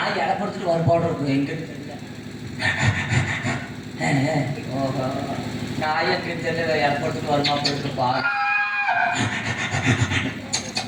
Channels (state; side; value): identical; both; correlation 1.00